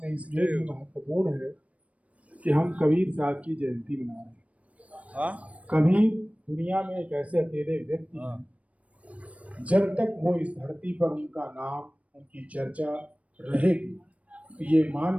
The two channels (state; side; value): late; left; 0.065 ms